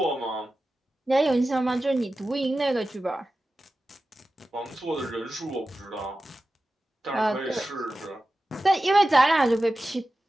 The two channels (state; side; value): normal; both; correlation 0.94